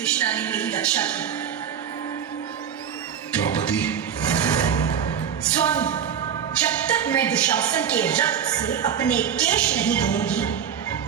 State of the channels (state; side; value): quieter; left; 8.4 dB